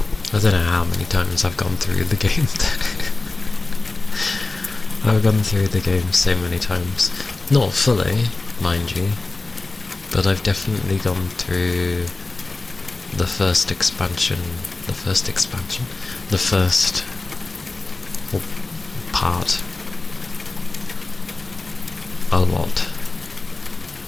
I don't know how many times I've gone through the game. I've gone through the game so many times. Not fully, mind you, but I've definitely gone through the first expansion, the first part a lot.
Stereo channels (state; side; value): quieter; right; 3.4 dB